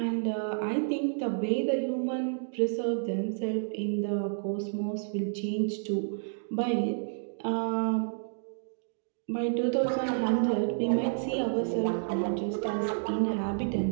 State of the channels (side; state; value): left; silent; digital silence